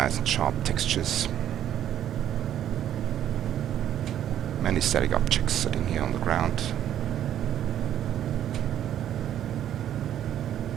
and sharp textures. Many static objects sitting here on the ground.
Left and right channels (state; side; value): quieter; left; 10.9 dB